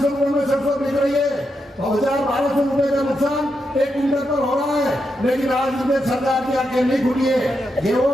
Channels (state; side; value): normal; both; correlation 0.84